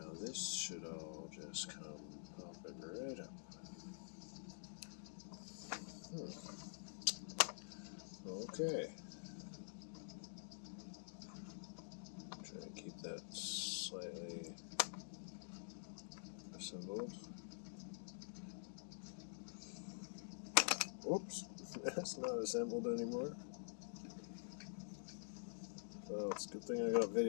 this should all just come popping right up. Okay. Try to keep that slightly assembled. Oops, that's not assembled anymore. Well, it's a good thing I got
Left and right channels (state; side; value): silent; right; digital silence